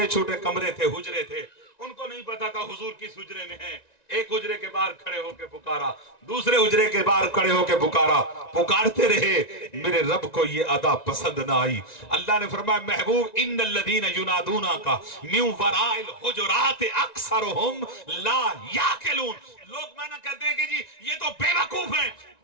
چھوٹے کمرے تھے، حجرے تھے، ان کو نہیں پتا تھا حضور کس حجرے میں ہیں. ایک حجرے کے باہر کھڑے ہو کے پکارا، دوسرے حجرے کے باہر کھڑے ہو کے پکارا، پکارتے رہے. میرے رب کو یہ ادا پسند نہ آئی. اللہ نے فرمایا محبوب ان الذین ینادونک من وراء الحجرات اکثرهم لا یعقلون. لوگ معنی کہتے ہیں کہ جی یہ تو بے وقوف ہیں.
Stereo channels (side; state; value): right; late; 1.9 ms